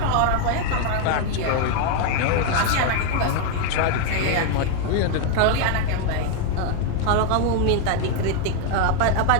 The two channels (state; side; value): different; both; correlation 0.00